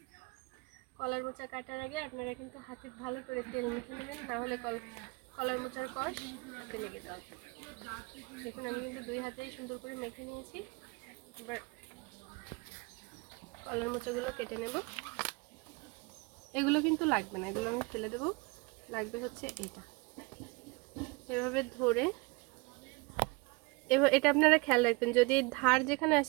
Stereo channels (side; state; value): left; quieter; 27.4 dB